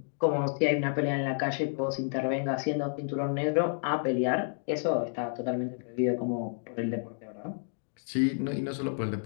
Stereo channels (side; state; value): right; silent; digital silence